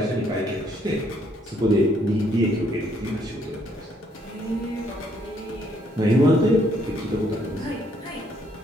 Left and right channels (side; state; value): both; normal; correlation 0.69